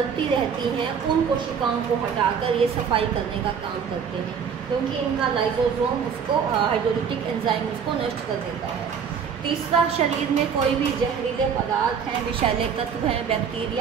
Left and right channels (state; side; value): quieter; left; 6.9 dB